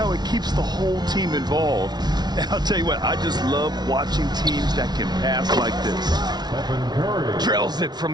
it keeps the whole team involved. And I'll tell you what, I just love watching teams that can pass like this. Drills it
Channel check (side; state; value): left; late; 0.20 ms